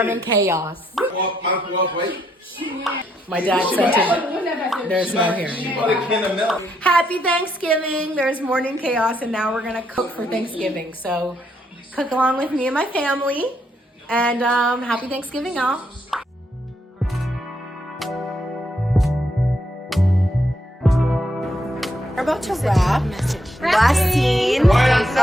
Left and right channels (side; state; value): both; normal; correlation 0.76